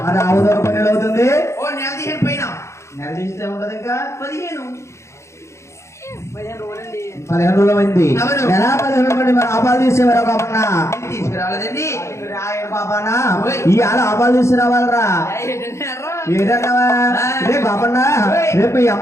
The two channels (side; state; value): right; late; 0.14 ms